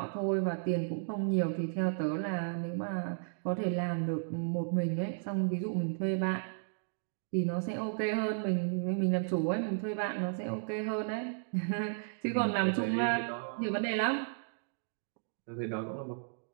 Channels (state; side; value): silent; left; digital silence